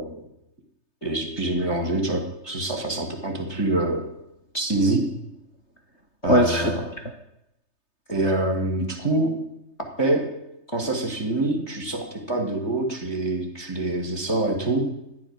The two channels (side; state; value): right; late; 3.3 ms